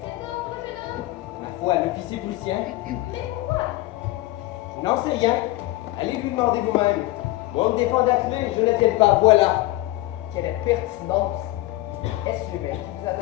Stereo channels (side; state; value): right; quieter; 18.1 dB